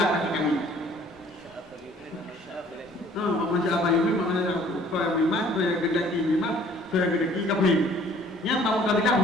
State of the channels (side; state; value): both; normal; correlation 0.55